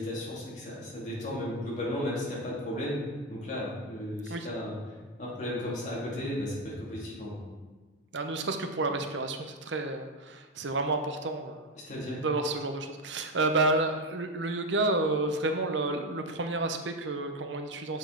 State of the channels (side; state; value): both; normal; correlation 0.10